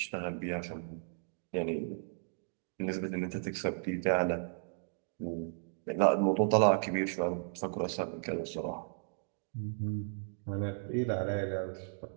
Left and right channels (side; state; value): left; silent; digital silence